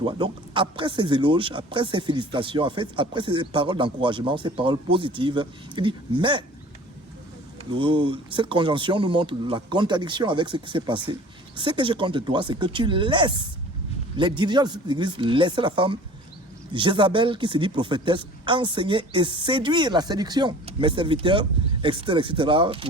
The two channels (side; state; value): both; normal; correlation 0.45